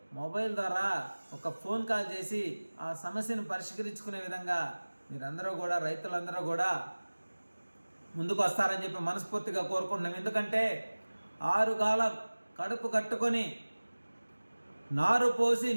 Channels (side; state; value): both; inverted; correlation -1.00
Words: మొబైల్ ద్వారా ఒక ఫోన్ కాల్ చేసి ఆ సమస్యను పరిష్కరించుకునే విధంగా మీరందరూ కూడా, రైతులందరూ కూడా ముందుకు వస్తారని చెప్పి మనస్ఫూర్తిగా కోరుకుంటున్నాం. ఎందుకంటే 6 కాలం కడుపు కట్టుకొని నారు పోసి